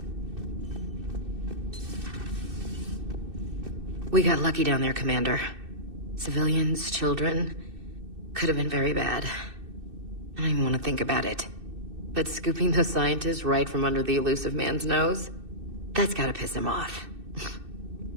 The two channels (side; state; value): left; late; 2.6 ms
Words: We got lucky down there, Commander. Civilians, children. Could have been very bad. I don't even want to think about it. But scooping those scientists right from under the elusive man's nose? That's gotta piss him off.